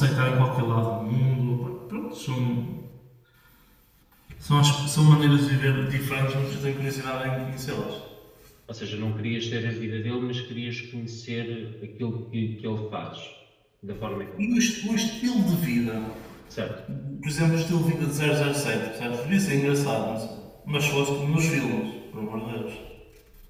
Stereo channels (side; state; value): both; identical; correlation 1.00